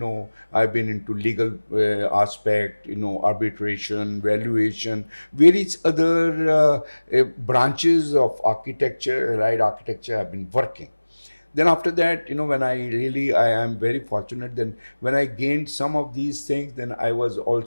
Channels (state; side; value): inverted; both; correlation -1.00